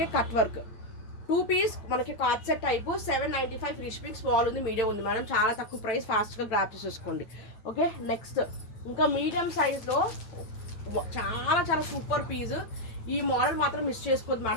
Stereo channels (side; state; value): right; late; 8.9 ms